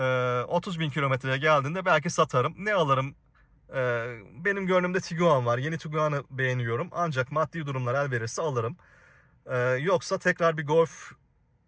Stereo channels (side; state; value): both; identical; correlation 1.00